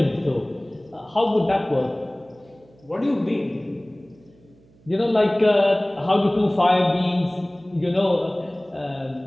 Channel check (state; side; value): noise; right; hum, 29 dB below the sound